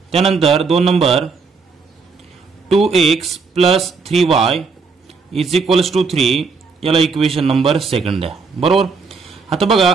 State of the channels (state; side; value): quieter; left; 4.8 dB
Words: त्यानंतर 2 नंबर 2x + 3y = 3, याला इक्वेशन नंबर सेकंड द्या, बरोबर। आता बघा